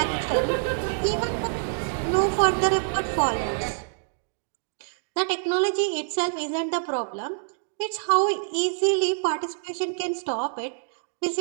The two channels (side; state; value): left; silent; digital silence